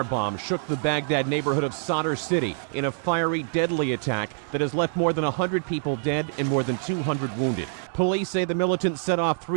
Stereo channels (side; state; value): left; silent; 61 dB below the other